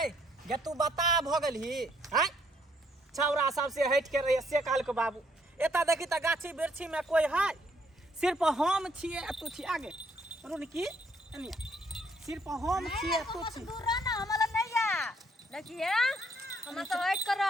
गे तू बता भ गेलही हैं छौरा सबसे हट के रही से काल के बाबू एता देखी त गाछी बिरछी में कोई है सिर्फ हम छिए तू छी आगे रुन की एनी सिर्फ हम छिए तू छी दूर रह ना हमरा नहीं आ देखिए हम तो हट कर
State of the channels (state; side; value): normal; both; correlation 0.69